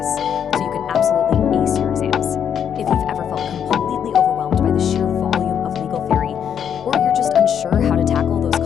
so you can absolutely ace your exams. If you've ever felt completely overwhelmed by the sheer volume of legal theory, or you're just unsure how to tackle those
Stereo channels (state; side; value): quieter; right; 8.4 dB